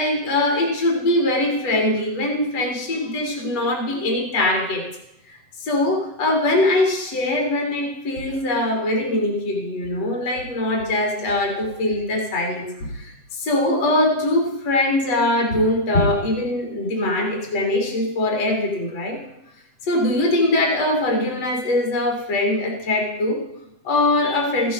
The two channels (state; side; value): late; right; 7.8 ms